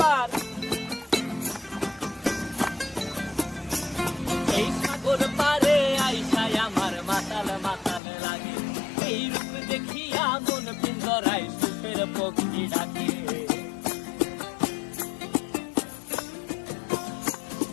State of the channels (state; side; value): drops out; right; at 8.0 s